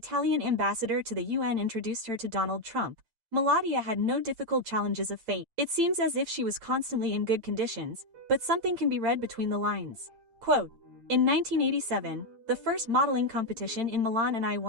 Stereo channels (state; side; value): late; left; 8.8 ms